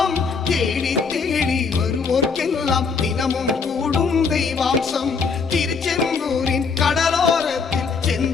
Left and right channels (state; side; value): quieter; right; 5.2 dB